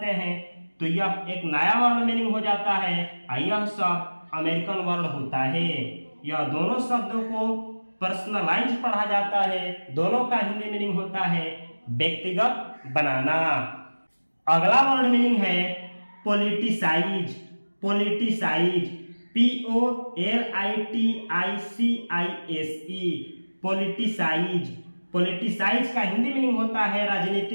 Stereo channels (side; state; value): both; inverted; correlation -1.00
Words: हैं तो यह एक नया वर्ड मीनिंग हो जाता है और यह शब्द अमेरिकन वर्ड होता है। यह दोनों शब्दों को पर्सनलाइज पढ़ा जाता है, दोनों का हिंदी मीनिंग होता है व्यक्तिगत बनाना। अगला वर्ड मीनिंग है politicise. Politicise, POLITICISE, politicise. Politicise का हिंदी मीनिंग होता है